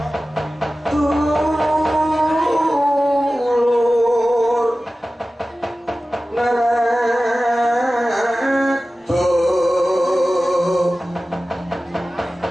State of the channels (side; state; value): both; normal; correlation 0.96